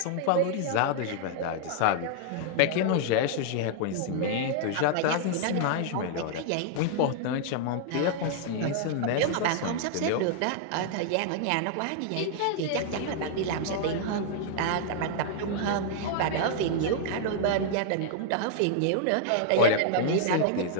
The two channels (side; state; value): both; different; correlation 0.00